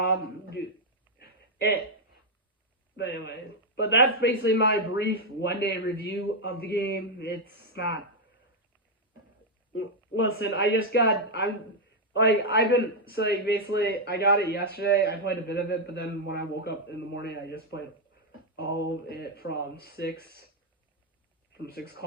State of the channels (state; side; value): normal; both; correlation 0.00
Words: But anyway. But that's basically my brief one-day review of the game. It's not... Listen, I got it yesterday. I played a bit of it, but then when I woke up in the morning, I just played all of it from 6